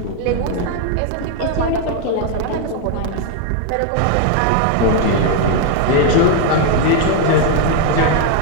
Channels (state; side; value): different; both; correlation 0.00